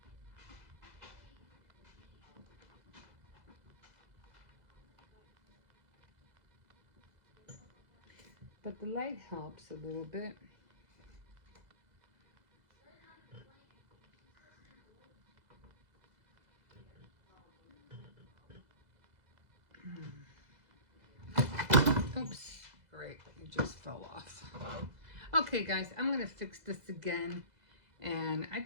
But the light helps a little bit. Oops, great, it just fell off. Okay guys, I'm gonna fix this again, and I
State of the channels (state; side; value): late; left; 2.0 ms